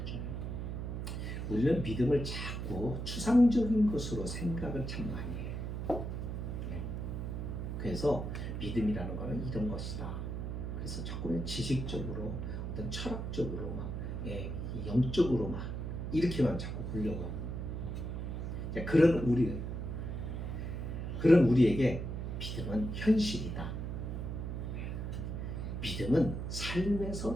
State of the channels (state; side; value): noise; right; hum, 4 dB below the sound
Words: 우리는 믿음을 자꾸 추상적인 것으로 생각을 참 많이 해요. 네. 그래서 믿음이라는 것은 이런 것이다. 그래서 자꾸 지식적으로 어떤 철학적으로 막 영적으로 막 이렇게만 자꾸 보려고 하고 그런 우리에게 믿음은 현실이다. 믿음은